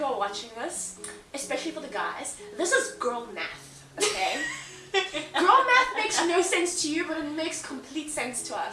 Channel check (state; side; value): identical; both; correlation 1.00